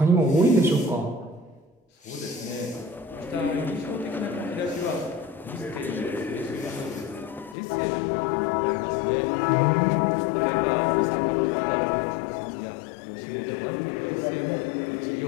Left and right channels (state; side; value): drops out; right; at 7.6 s